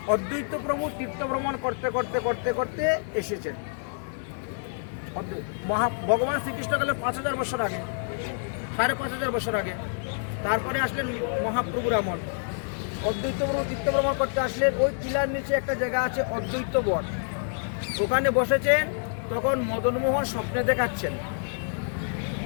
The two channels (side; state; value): right; silent; digital silence